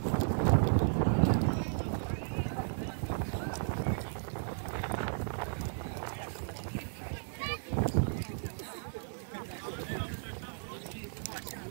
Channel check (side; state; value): left; silent; digital silence